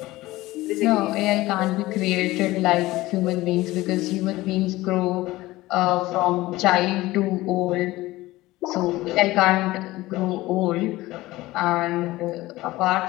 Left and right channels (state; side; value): quieter; right; 18.3 dB